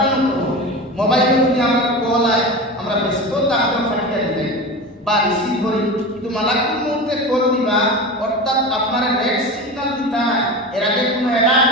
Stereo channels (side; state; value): both; normal; correlation 0.28